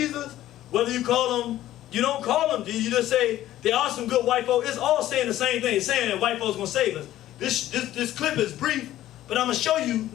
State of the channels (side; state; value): right; quieter; 13.7 dB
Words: whether you call him, you don't call them, you just say there are some good white folks. It's all saying the same thing. It's saying that white folks gonna save us. This clip is brief, but I'm gonna show you